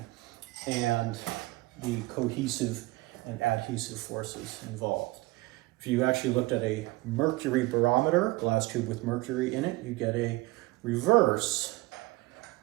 and the cohesive and adhesive forces involved. If you actually looked at a mercury barometer, glass tube with mercury in it, you get a inverse,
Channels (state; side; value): quieter; left; 21.3 dB